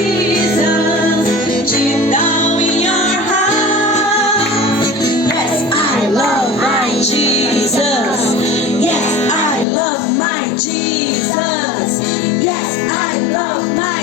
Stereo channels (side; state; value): right; drops out; at 9.7 s